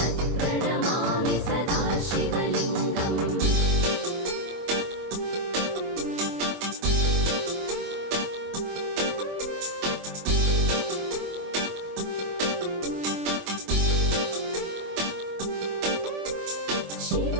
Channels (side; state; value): left; late; 24 ms